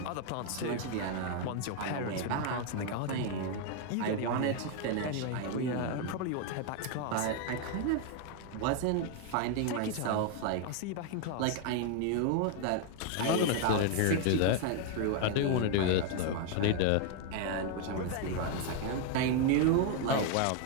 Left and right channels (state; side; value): different; both; correlation 0.00